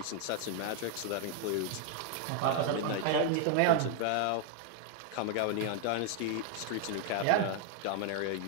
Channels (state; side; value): different; both; correlation 0.00